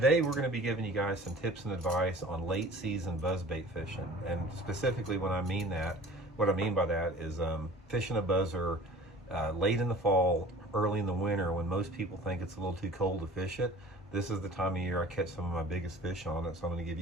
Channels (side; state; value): both; normal; correlation 0.45